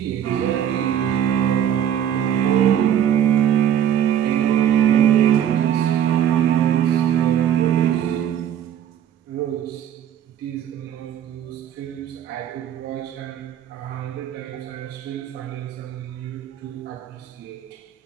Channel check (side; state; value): left; quieter; 9.9 dB